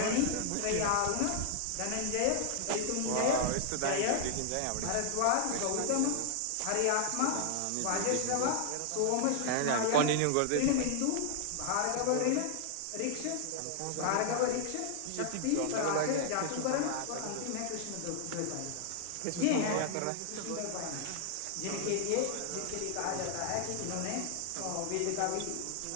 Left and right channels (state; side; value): different; both; correlation 0.00